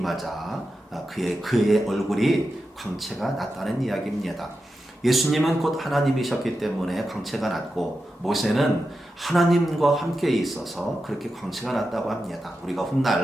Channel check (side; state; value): both; normal; correlation 0.90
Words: 그의 얼굴이 광채가 났다는 이야기입니다. 예수님은 곧 하나님이셨기 때문에 광채가 났고 모세는 하나님과 함께 있어서 그렇게 광채가 났다고 합니다. 우리가